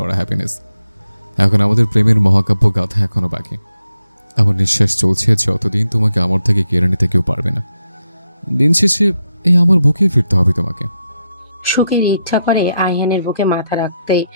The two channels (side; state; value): both; inverted; correlation -0.84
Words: হ্যাপিনেস। এখন আমাদের প্রেমের মহাকাব্য গাথা এখনো বাকি। আমার নিঃশ্বাস চলছে যতদিন তোমাকে আমার থেকে কেড়ে নিতে কেউ পারবে না। দিন শেষে এই আমার বুকেই ফিরতে হবে তোমাকে। সুখের ইচ্ছা করে আইহানের বুকে মাথা রাখতে,